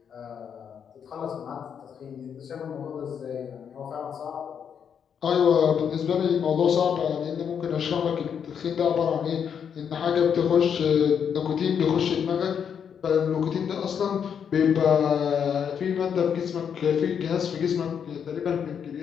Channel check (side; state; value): right; quieter; 7.6 dB